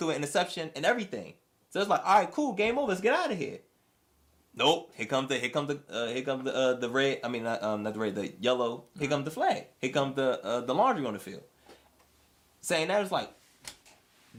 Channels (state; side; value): identical; both; correlation 1.00